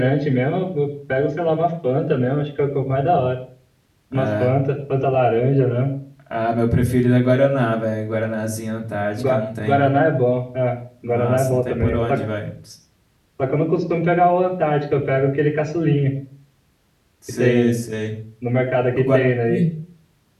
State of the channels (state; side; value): identical; both; correlation 1.00